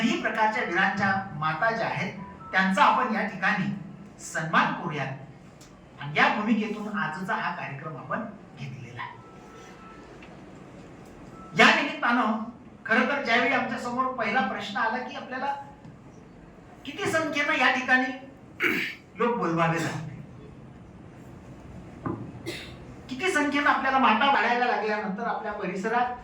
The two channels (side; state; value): both; identical; correlation 1.00